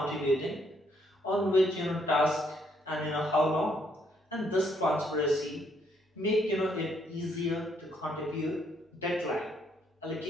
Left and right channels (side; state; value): both; normal; correlation 0.71